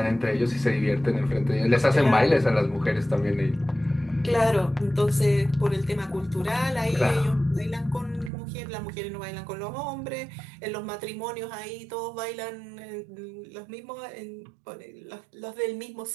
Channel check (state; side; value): drops out; left; at 8.3 s